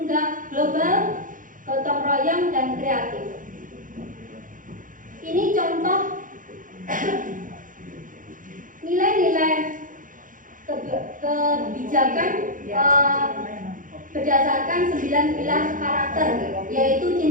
global, gotong royong, dan kreatif. Ini contoh nilai-nilai kebijakan berdasarkan 9 pilar karakter, yaitu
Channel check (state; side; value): late; left; 0.39 ms